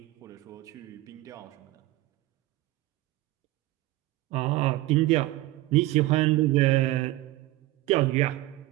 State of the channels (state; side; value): quieter; left; 18.0 dB